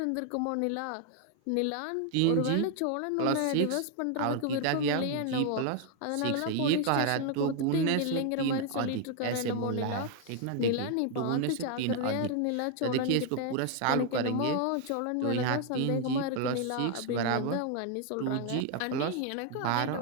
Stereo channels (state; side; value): different; both; correlation 0.00